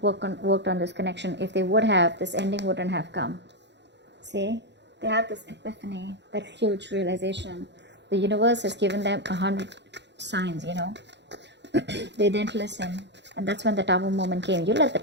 worked on this connection. If they would have, this ending wouldn't have come. See? They have this epiphany, that huge realization. The universe has given them 100 signs, you know. They didn't listen. And that's when the tower moment came. You let the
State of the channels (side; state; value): left; late; 0.51 ms